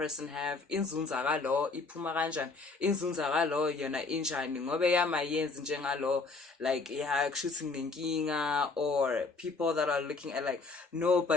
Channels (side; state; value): right; quieter; 4.0 dB